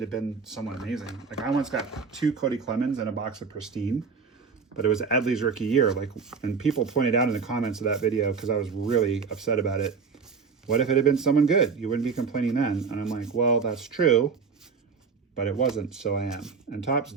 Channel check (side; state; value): left; quieter; 5.4 dB